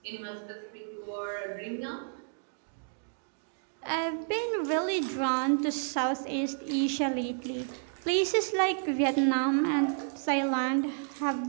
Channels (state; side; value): silent; left; digital silence